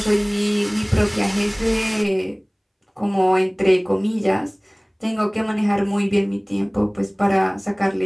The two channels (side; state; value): both; identical; correlation 1.00